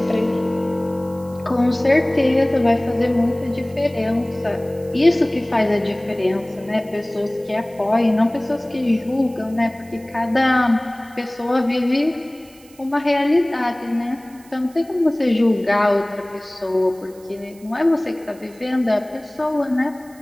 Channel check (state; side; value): noise; right; hiss, 26 dB below the sound